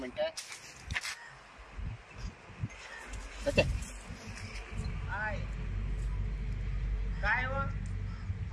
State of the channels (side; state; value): both; identical; correlation 1.00